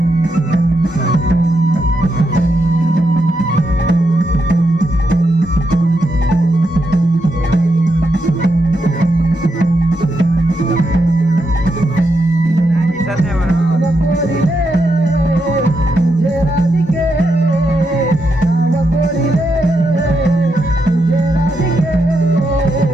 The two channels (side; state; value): both; normal; correlation 0.83